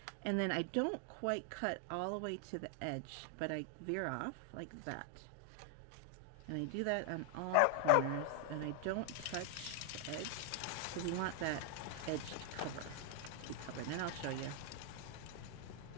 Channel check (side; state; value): both; different; correlation 0.00